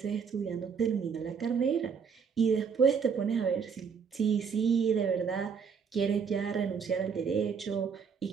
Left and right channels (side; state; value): left; quieter; 6.3 dB